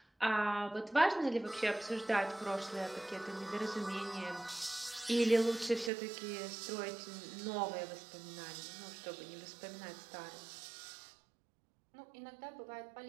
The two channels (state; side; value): drops out; left; at 5.9 s